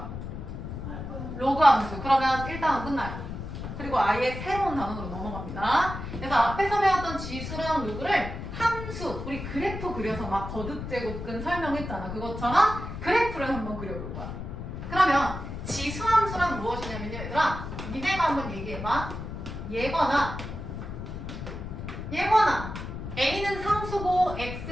로그 함수. 그러면 1단원 끝나요. 그리고 아예 새로운 단원으로 넘어갑니다. 그래서 앞에서 배웠던 지수랑 로그를 함수, 우리 그래프 그려서 막 거듭 제곱근 설명했잖아. 그것처럼 그래프를 한번 그려볼 거야. 그러면 지수 함수란 무엇이냐면요, 얘들아. 니네가 한번 얘기해봐. 얘거나 A는 상수고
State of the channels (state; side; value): noise; left; rumble, 8 dB below the sound